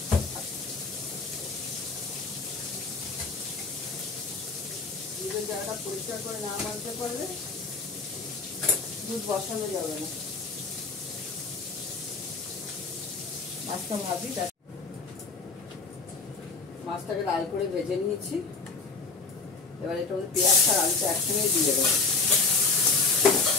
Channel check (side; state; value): right; quieter; 4.3 dB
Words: দুধের জায়গাটা পরিষ্কার করে না মানতে পারলে দুধ বসানো যাবে না। মাছটা ভাবি, মাছটাকে লাল করে ভেজে নিয়েছি। এবার এটা পেঁয়াজটা আর আলুটা একসঙ্গে দিয়ে দেবো।